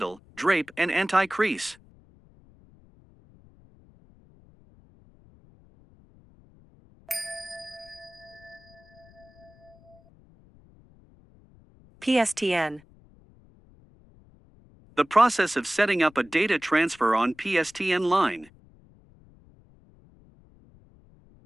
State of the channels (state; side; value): noise; left; rumble, 27 dB below the sound